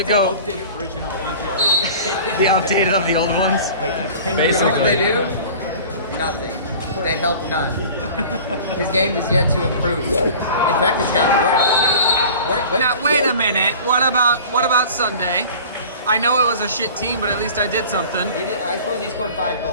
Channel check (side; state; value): both; inverted; correlation -0.42